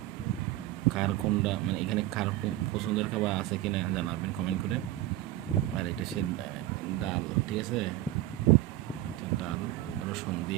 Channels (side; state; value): left; quieter; 15.2 dB